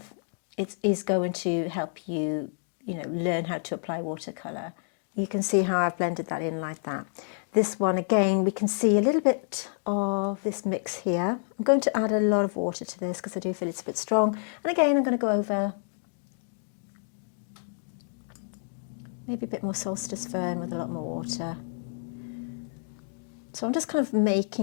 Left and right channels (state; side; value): silent; right; digital silence